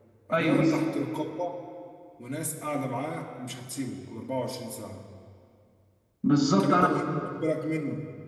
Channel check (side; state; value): both; identical; correlation 1.00